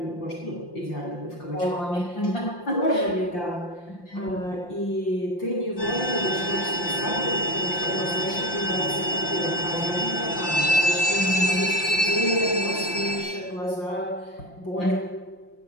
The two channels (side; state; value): right; late; 5.7 ms